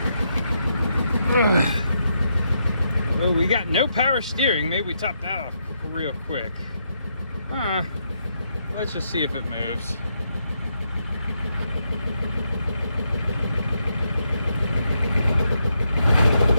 Oh, we got no power steering. Maybe we top that off real quick. Let's just see if it moves.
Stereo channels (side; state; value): both; inverted; correlation -0.80